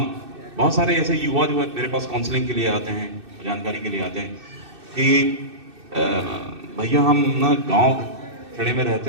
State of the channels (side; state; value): left; late; 2.6 ms